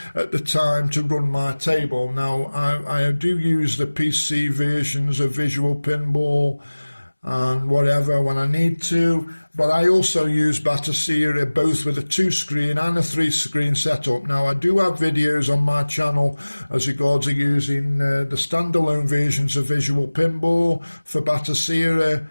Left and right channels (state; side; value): inverted; both; correlation -1.00